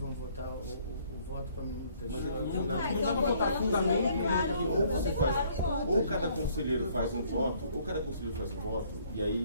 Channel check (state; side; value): inverted; both; correlation -0.62